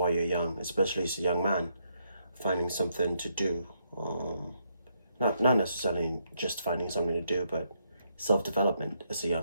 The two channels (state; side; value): inverted; both; correlation -0.76